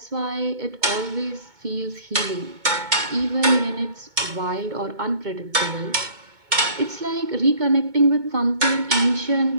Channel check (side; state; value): left; late; 2.2 ms